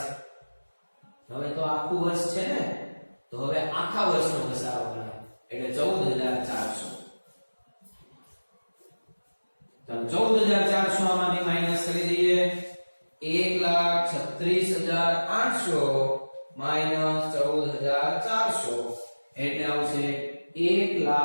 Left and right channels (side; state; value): both; inverted; correlation -1.00